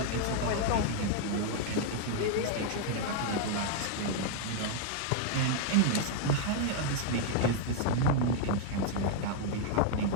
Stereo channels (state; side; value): different; both; correlation 0.00